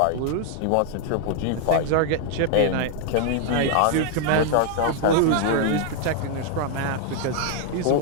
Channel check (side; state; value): both; different; correlation 0.00